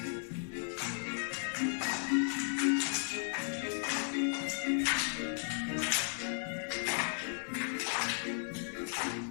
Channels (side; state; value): right; silent; 54 dB below the other